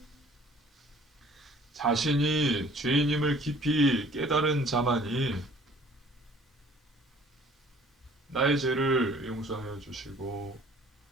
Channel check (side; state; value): both; normal; correlation 0.54